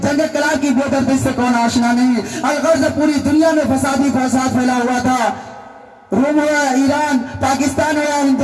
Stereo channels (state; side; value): identical; both; correlation 1.00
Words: جنگ کلا کی بے دردی سے کون آشنا نہیں۔ الغرض پوری دنیا میں فسادی فساد پھیلا ہوا تھا، روم ہو یا ایران، پاکستان ہو یا